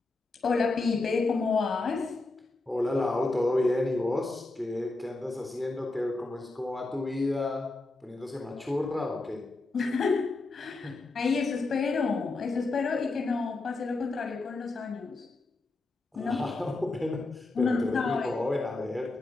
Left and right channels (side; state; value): right; quieter; 3.3 dB